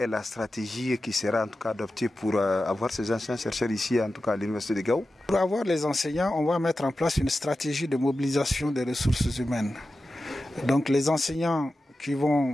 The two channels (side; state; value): both; normal; correlation 0.93